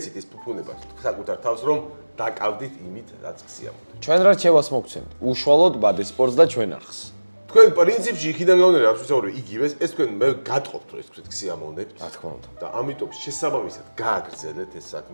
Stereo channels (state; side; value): inverted; both; correlation -1.00